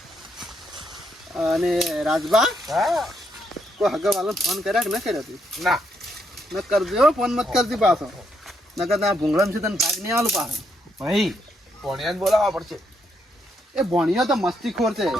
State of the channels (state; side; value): normal; both; correlation 0.77